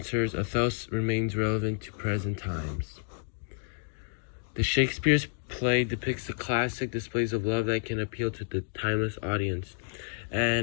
Othello remains relevant to present times. The Shakespeare's play depicts the classic displays of love that can appeal to the timeless audience.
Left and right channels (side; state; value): right; silent; digital silence